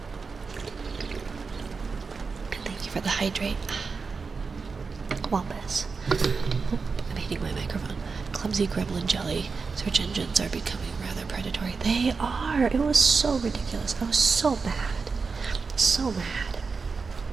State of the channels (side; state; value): left; quieter; 4.8 dB